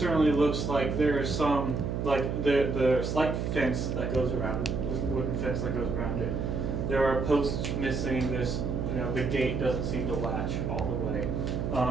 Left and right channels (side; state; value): right; noise; hum, 1 dB below the sound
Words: looks like there is some, like the slight fence that goes around it, wooden fence that goes around it. There are posts missing. This, the gate doesn't seem to latch all the way.